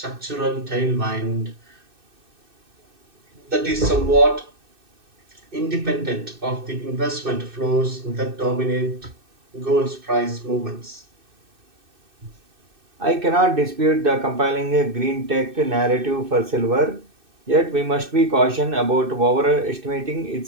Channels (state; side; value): late; left; 2.6 ms